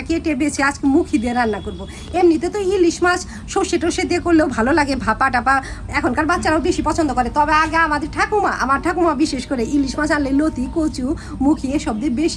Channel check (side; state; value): both; identical; correlation 1.00